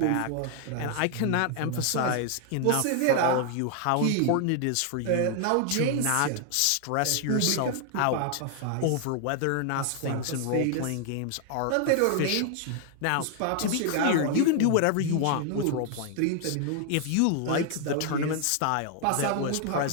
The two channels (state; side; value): different; both; correlation 0.00